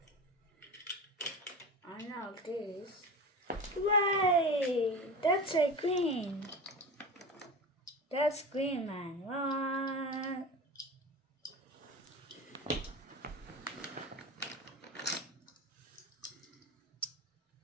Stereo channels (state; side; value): normal; both; correlation 0.29